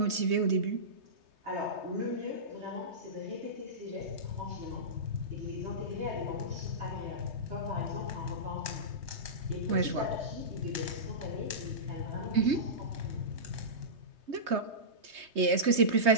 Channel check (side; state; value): left; late; 3.2 ms